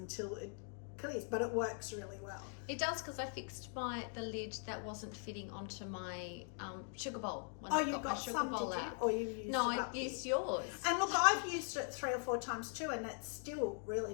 it clears. But it works really well. It does, because I fixed the lid that wasn't fitting onto my sugar bowl. When Oh, I you got some, did you? Or you used No, it I up used here? yours. And look, I've used it 3 or 4 times too, and it's still really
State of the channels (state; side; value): silent; right; 50 dB below the other